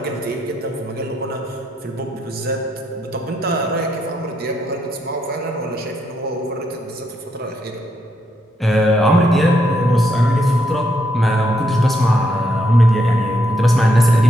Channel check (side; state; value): both; normal; correlation 0.77